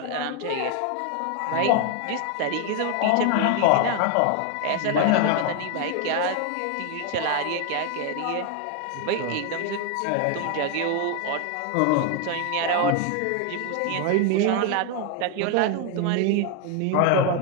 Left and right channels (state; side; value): different; both; correlation 0.01